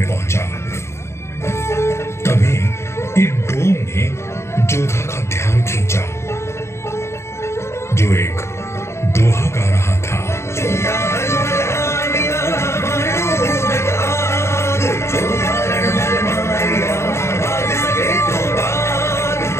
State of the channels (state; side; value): late; right; 0.13 ms